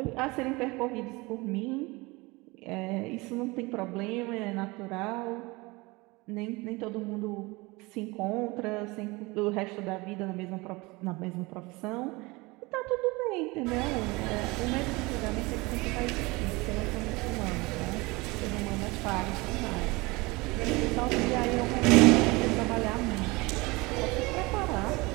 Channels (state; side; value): quieter; left; 23.9 dB